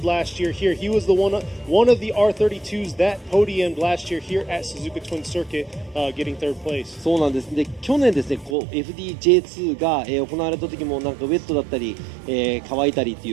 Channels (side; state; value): left; drops out; at 8.6 s